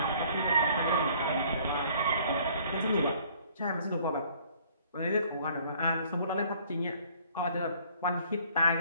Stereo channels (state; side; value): inverted; both; correlation -0.58